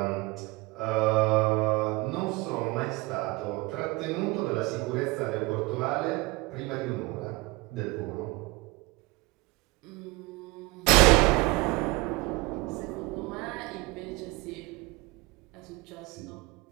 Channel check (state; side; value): quieter; left; 23.5 dB